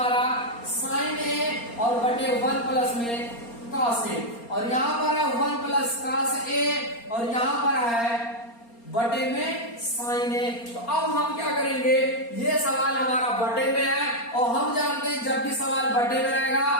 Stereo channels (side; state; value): right; late; 4.3 ms